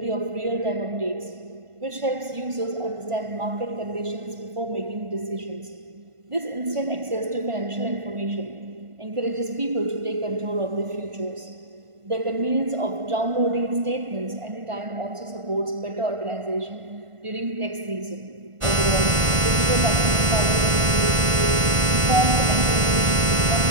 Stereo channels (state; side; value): late; left; 1.5 ms